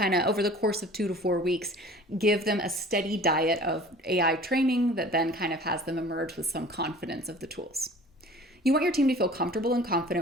of, over the course of 2 to 4 weeks, give them a steady diet of AI training that then kind of has them emerge with some confidence of the tools. You want your team to feel comfortable and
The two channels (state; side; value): normal; both; correlation 0.46